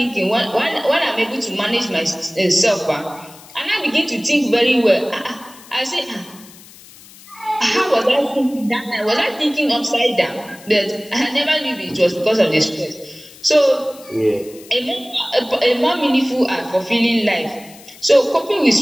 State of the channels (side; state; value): left; noise; hiss, 21 dB below the sound